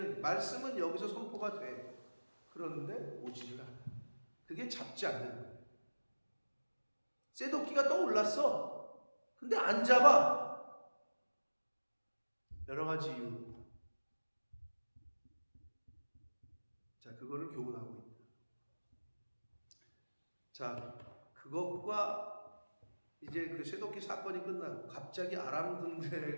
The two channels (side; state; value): both; inverted; correlation -1.00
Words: 말씀은 여기서 선포가 돼. 그런데 오지를 않아. 그게 잡지 않는 거예요. 쇠도끼가 떠올랐어. 근데 안 잡아. 여러 가지 이유. 자, 그거를 교훈하고 있다. 자, 그것과 이제 그 쇠도끼 사건이 끝나고 갑자기 아람